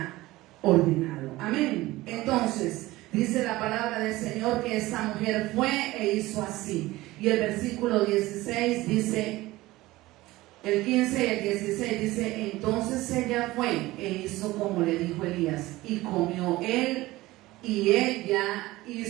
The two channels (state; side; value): quieter; left; 18.5 dB